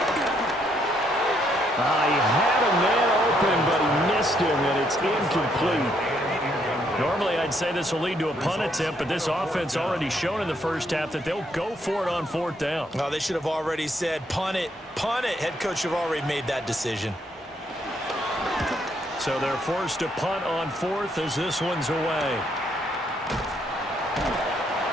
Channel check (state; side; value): normal; both; correlation 0.72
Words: He had a man open, but he missed him, and it's incomplete. Normally, I'd say this will lead to a punt attempt, but this offense already shown in the first half that they'll go for it on 4th down. Oh, they should have already said, punt it, punt it. Head coach have already made that decision. So they're forced to punt on 4th as this one's away.